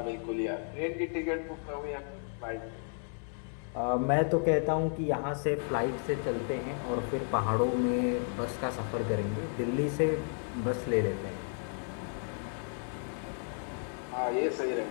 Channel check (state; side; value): silent; right; 56 dB below the other